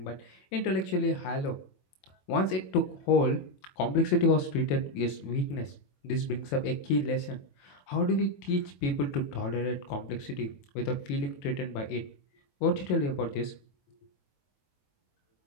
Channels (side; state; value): right; late; 22 ms